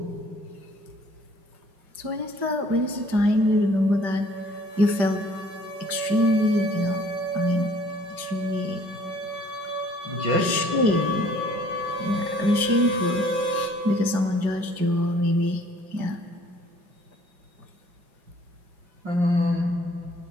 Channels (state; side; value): late; left; 5.1 ms